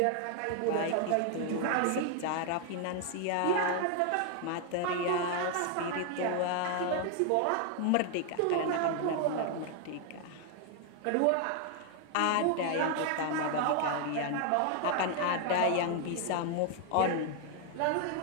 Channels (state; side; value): different; both; correlation 0.00